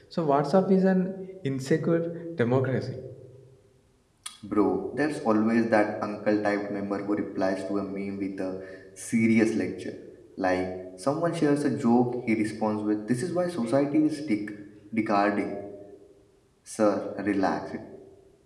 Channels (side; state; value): both; identical; correlation 1.00